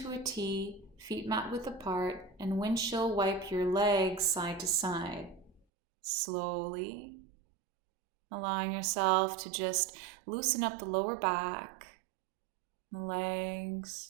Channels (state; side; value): drops out; left; at 5.6 s